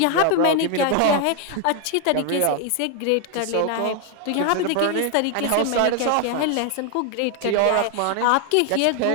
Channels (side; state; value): both; different; correlation 0.01